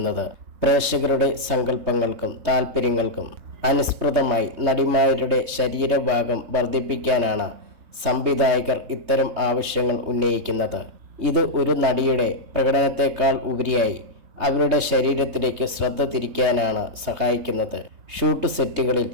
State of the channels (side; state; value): left; late; 3.2 ms